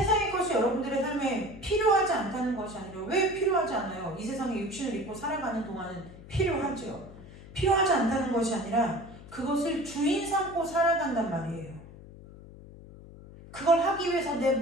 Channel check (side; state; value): left; noise; hum, 18 dB below the sound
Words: 것이 여러분들의 삶에 필요하지 않다는 것이 아니라 왜 필요하지 않아요? 이 세상에 육신을 입고 살아가는 동안은 필요하죠. 필요하지 않다는 것이 아니라 그것을 주인 삼고 살아간단 말이에요. 그걸 하기 위해서 내